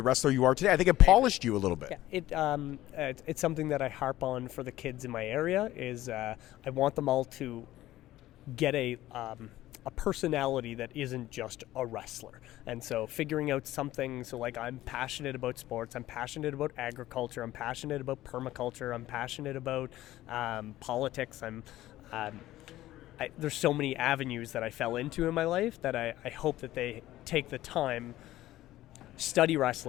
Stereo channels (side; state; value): right; quieter; 15.2 dB